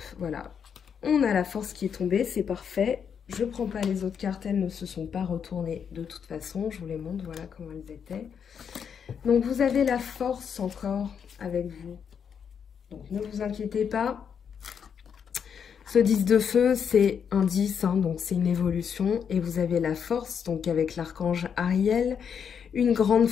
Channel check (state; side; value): quieter; right; 7.3 dB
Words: voilà. On a la force qui est tombée, c'est parfait. Je ne prends pas les autres cartes, elles ne se sont pas retournées de toute façon. Je vous les montre, voilà comment elles étaient. Donc, vous avez la force encore avec vous. Donc, ne vous inquiétez pas. Ce 10 de feu, c'est un 10, hein, donc c'est une évolution. Et vous avez la force, donc avec l'archange Ariel, une grande